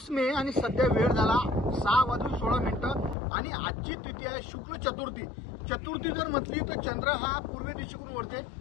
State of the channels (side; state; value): right; drops out; at 3.2 s